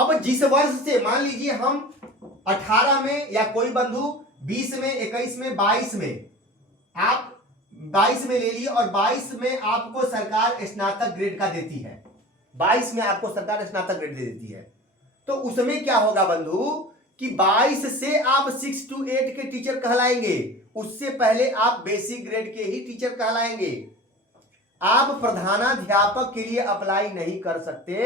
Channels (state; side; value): normal; both; correlation 0.37